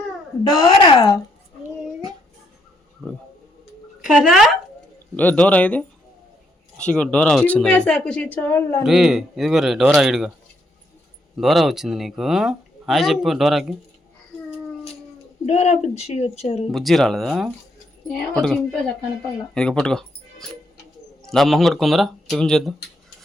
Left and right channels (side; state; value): both; normal; correlation 0.74